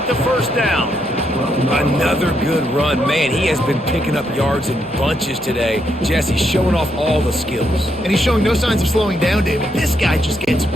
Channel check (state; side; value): noise; right; hum, 26 dB below the sound